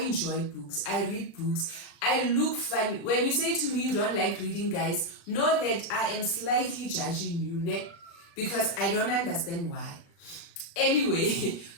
books. I read books. I look funny. When you say to me you don't like reading, guys, know that I am slightly judging you, because I don't understand why. Anyway,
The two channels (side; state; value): right; late; 35 ms